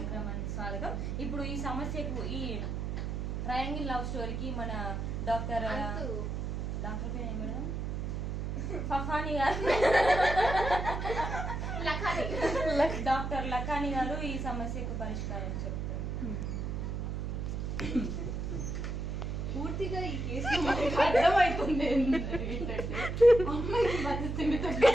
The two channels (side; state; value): right; noise; hum, 3 dB below the sound